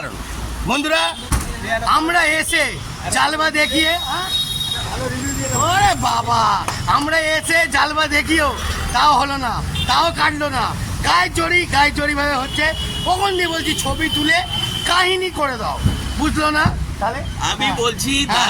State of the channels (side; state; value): both; identical; correlation 1.00